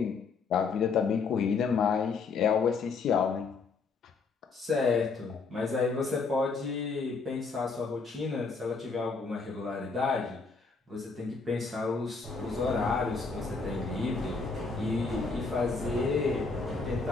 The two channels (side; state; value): right; quieter; 4.6 dB